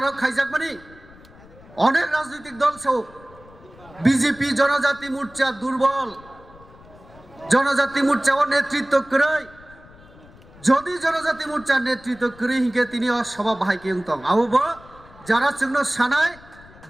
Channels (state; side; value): noise; left; rumble, 23 dB below the sound